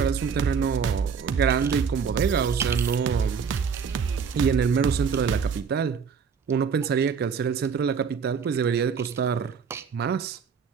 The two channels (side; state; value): left; quieter; 6.2 dB